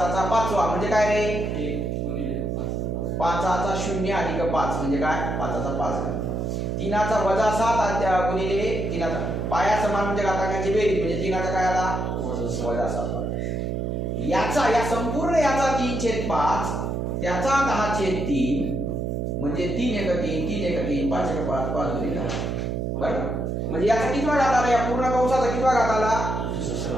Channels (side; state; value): right; noise; hum, 1 dB below the sound